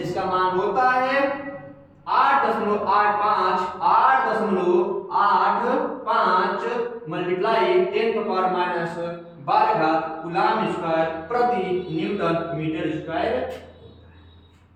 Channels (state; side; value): identical; both; correlation 1.00